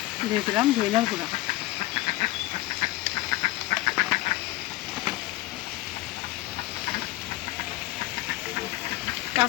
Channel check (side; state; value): right; quieter; 18.1 dB